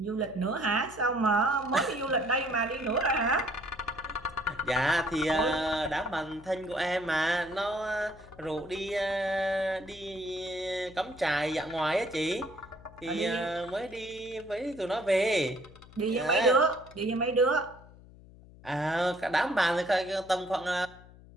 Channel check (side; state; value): left; noise; hum, 21 dB below the sound